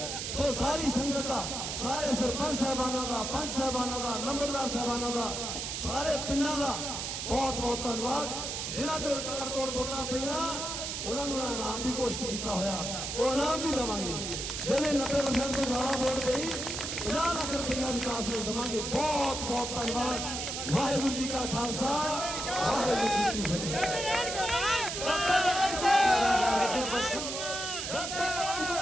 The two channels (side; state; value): right; noise; hiss, 4 dB below the sound